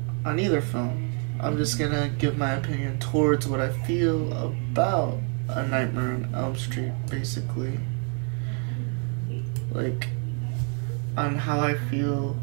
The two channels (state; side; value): quieter; left; 39.8 dB